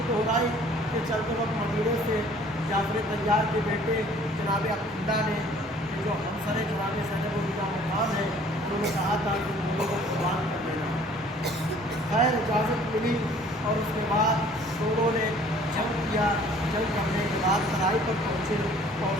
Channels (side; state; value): both; normal; correlation 0.54